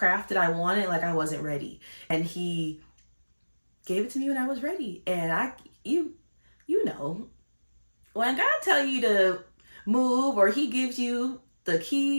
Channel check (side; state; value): both; inverted; correlation -1.00